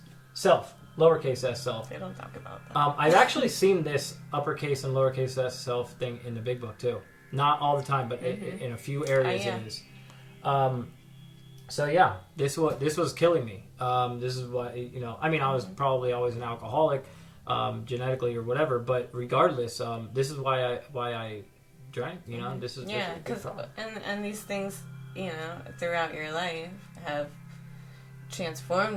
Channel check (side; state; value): both; identical; correlation 1.00